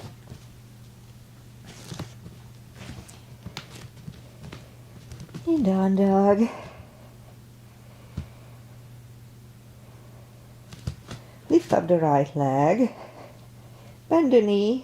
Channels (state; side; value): identical; both; correlation 1.00